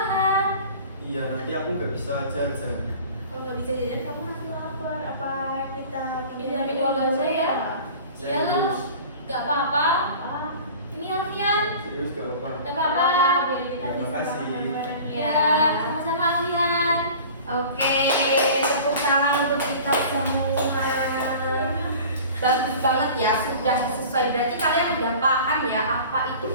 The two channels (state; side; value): inverted; both; correlation -0.41